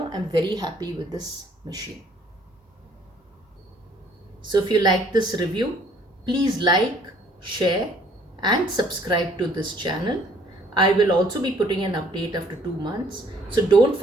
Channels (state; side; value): normal; both; correlation 0.60